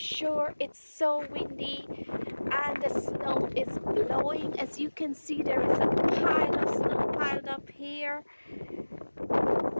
it's so windy and the snow is blowing. As you can see, there is a pile of snow piled up here.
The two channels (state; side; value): inverted; both; correlation -1.00